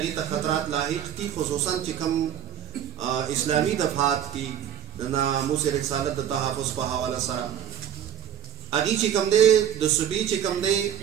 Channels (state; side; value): quieter; left; 9.6 dB